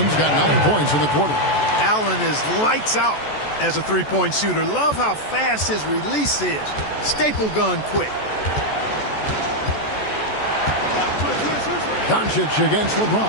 got 9 points in the quarter. Allen is lights out as a three-point shooter. Love how fast his release is. Staple gun quick. Doncic against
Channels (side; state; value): right; late; 14 ms